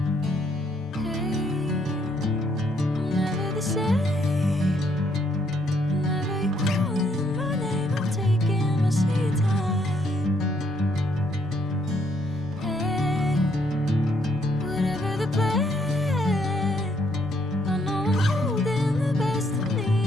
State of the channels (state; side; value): normal; both; correlation 0.70